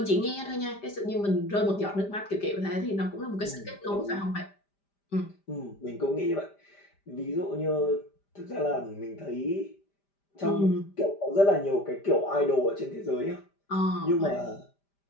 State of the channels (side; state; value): right; late; 5.1 ms